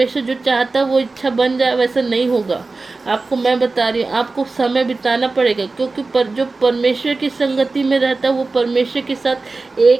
जो चाहता है वो इच्छा बन जाए, वैसा नहीं होगा। आपको मैं बता रही हूँ, आपको समय बिताना पड़ेगा, क्योंकि जो परमेश्वर की संगति में रहता है वो परमेश्वर के साथ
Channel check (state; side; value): quieter; left; 3.7 dB